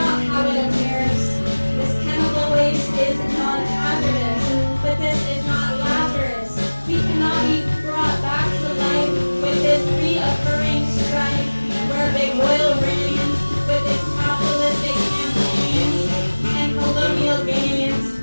how it appears. This chemical waste is non-hazardous, but this is not Lazarus. We cannot be brought back to life with this reoccurring strife, where big oil reigns with its capitalistic campaigns and colonial gains,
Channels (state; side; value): inverted; both; correlation -1.00